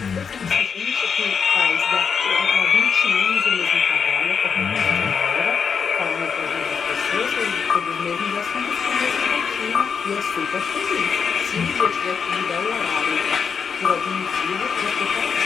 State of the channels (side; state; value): right; quieter; 6.3 dB